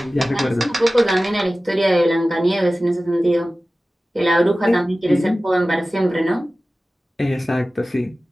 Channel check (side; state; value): both; normal; correlation 0.96